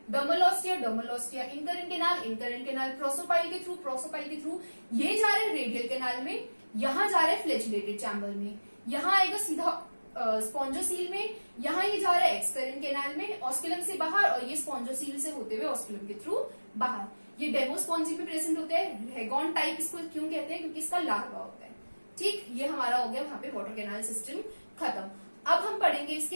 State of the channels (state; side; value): inverted; both; correlation -1.00